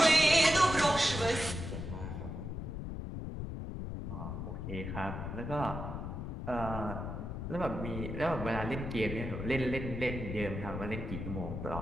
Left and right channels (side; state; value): left; noise; rumble, 5 dB below the sound